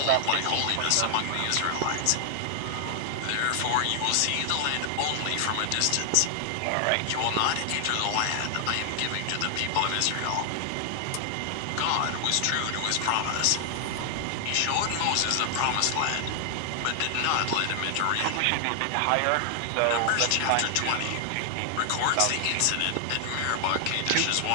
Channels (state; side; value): different; both; correlation 0.00